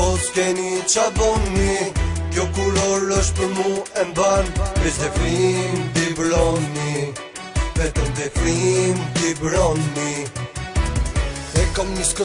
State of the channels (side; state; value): both; identical; correlation 1.00